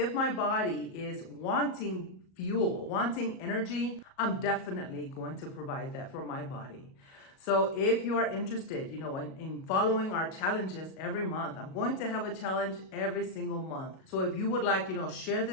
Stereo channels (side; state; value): right; late; 37 ms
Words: my body is wanting fuel, wanting energy, I'm definitely going to provide that for my body. So if you are interested, in following our challenges every month, I'm going to have a challenge every single month. So if you would like, share